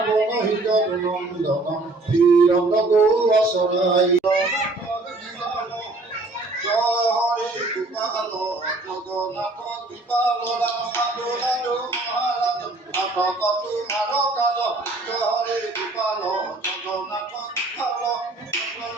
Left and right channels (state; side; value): quieter; left; 3.0 dB